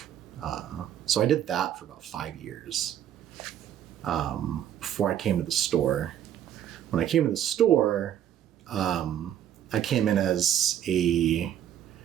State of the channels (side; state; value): left; quieter; 10.5 dB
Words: So I did that for about 5 years before I came to the store. When I came to the store, I came in as a